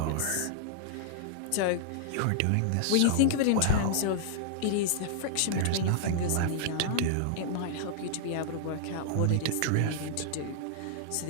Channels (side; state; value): both; different; correlation -0.01